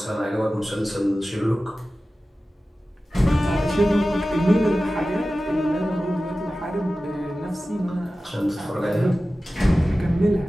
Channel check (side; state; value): both; normal; correlation 0.95